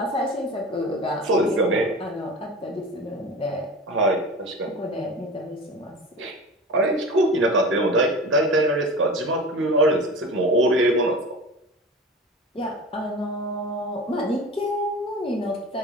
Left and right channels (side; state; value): both; normal; correlation 0.33